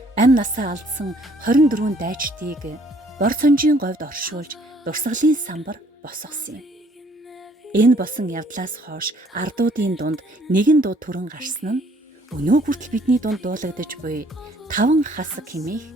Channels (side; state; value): both; normal; correlation 0.62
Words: амь насаа алдсан 24 дайчдыг бор цонжийн говьд оршуулж дурсгалын самбар босгосон юм. Энэ болсон явдлаас хойш ардуудын дунд нэгэн дуу түрэн гарсан нь өнөө хүртэл бидний дунд дуулагдаж буй 5 хасаг хэмээх